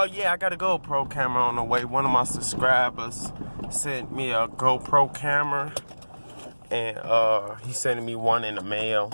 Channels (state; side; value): inverted; both; correlation -1.00